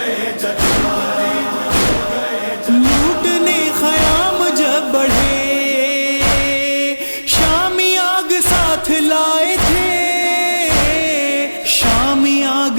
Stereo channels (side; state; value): both; inverted; correlation -1.00